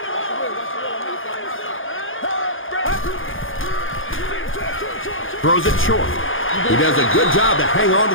Throws it short. He does a good job to hang on to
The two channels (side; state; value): right; late; 0.58 ms